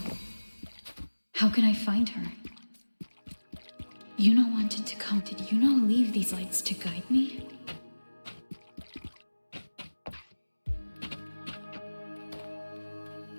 How can I find her? Iuno wanted to come. Did Iuno leave these lights to guide me?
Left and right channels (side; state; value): both; inverted; correlation -1.00